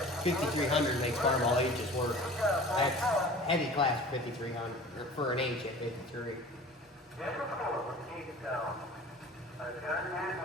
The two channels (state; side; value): normal; both; correlation 0.42